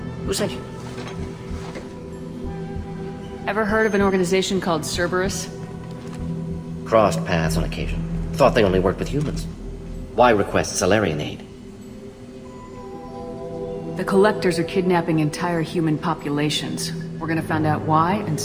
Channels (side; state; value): both; identical; correlation 1.00